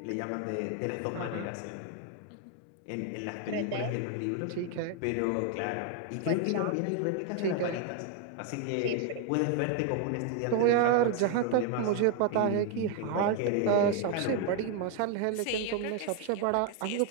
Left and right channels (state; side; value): different; both; correlation 0.01